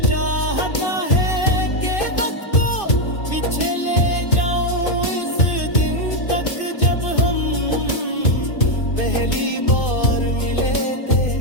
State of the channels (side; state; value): right; late; 2.6 ms